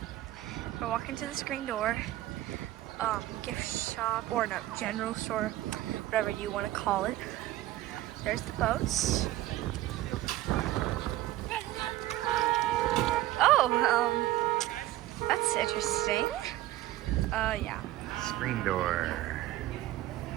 We're walking to the screen door. Gift shop, or no, general store, whatever you want to call it. There's the boats. Oh, that's interesting. Yeah. Screen door.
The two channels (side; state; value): left; quieter; 15.3 dB